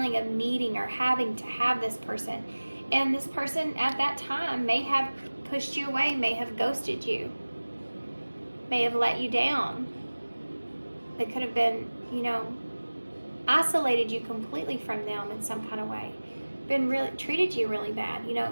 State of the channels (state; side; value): inverted; both; correlation -1.00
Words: of needing or having to have this person. And this person at that time may have pushed you away, may have ghosted you, may have let you down. They could have been, isolated you completely from them in some kind of way. Treated you really bad.